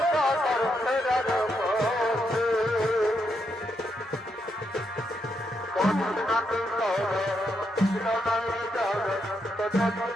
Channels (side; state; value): both; normal; correlation 0.80